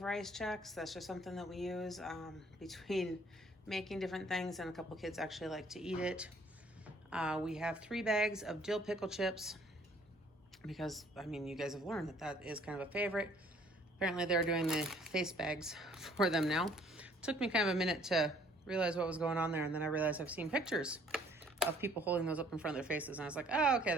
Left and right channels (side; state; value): both; normal; correlation 0.59